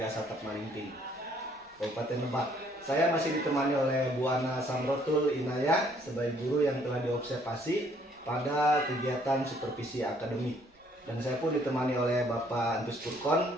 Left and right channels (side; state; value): both; normal; correlation 0.63